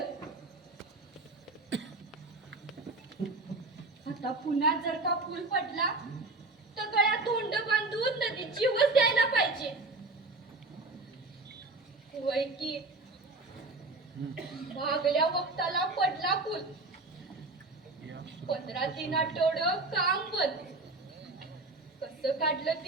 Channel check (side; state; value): left; quieter; 3.2 dB